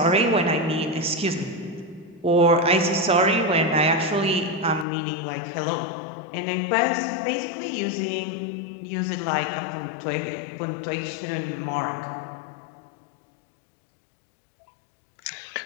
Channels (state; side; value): drops out; right; at 4.9 s